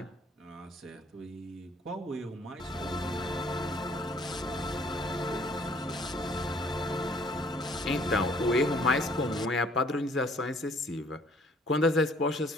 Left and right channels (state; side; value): normal; both; correlation 0.60